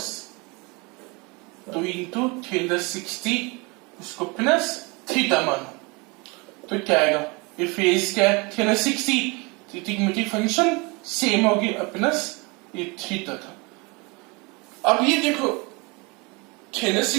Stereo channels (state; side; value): quieter; left; 27.8 dB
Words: 2 इंटू 360 उसको प्लस थीटा मानो तो क्या आएगा ये फेज क्या है 360 ट्रिग्नोमेट्रिक फंक्शन सेम होगी प्लस ये थीटा था। अब ये देखो